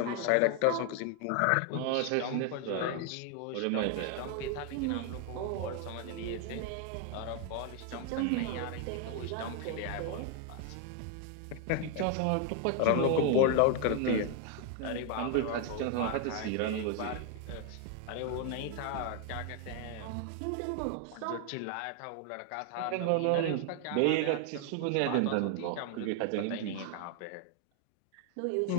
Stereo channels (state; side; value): different; both; correlation 0.00